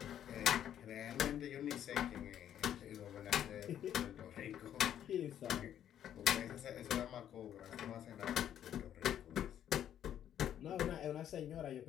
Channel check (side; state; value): right; quieter; 10.3 dB